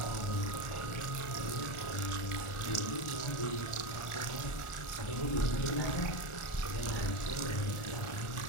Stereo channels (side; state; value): right; late; 1.4 ms